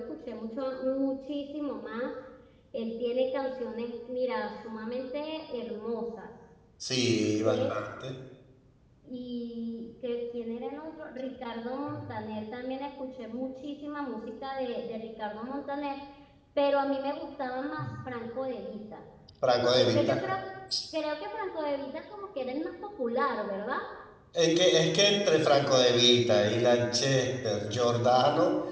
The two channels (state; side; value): identical; both; correlation 1.00